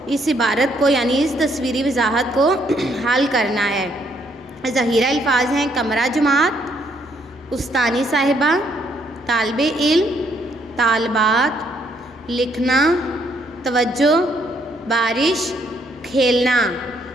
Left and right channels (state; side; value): normal; both; correlation 0.70